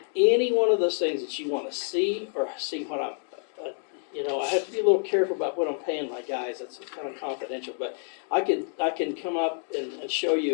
any one of those things that you want to see or see what I'm, I have to be a little careful about what I'm paying my guys. That's kind of confidential, but I can come up and show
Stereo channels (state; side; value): silent; right; 60 dB below the other